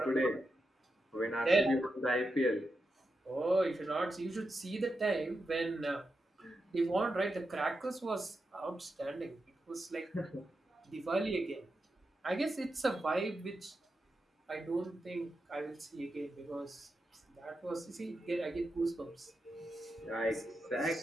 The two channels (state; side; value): normal; both; correlation 0.87